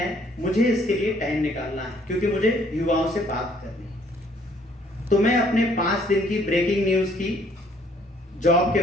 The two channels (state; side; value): normal; both; correlation 0.63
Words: मुझे इसके लिए टाइम निकालना है क्योंकि मुझे युवाओं से बात करनी है। तो मैं अपने 5 दिन की ब्रेकिंग न्यूज़ की जॉब